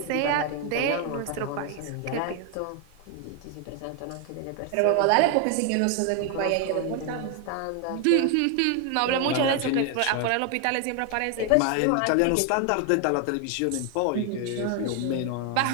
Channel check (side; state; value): both; different; correlation 0.00